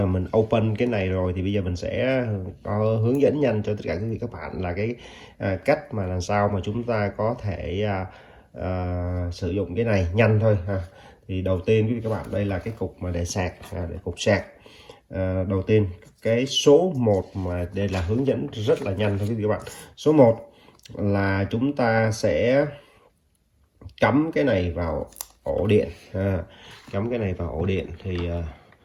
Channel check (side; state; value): both; identical; correlation 1.00